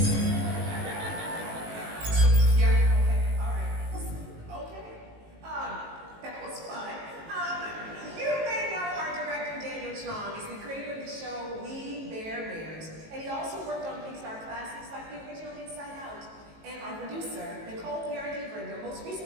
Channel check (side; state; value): left; late; 18 ms